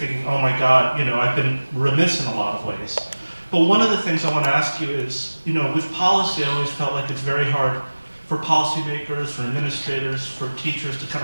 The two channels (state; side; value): inverted; both; correlation -1.00